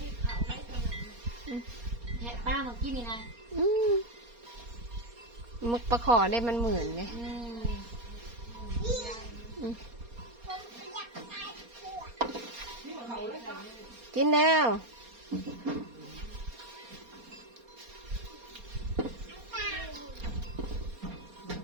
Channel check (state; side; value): late; left; 4.3 ms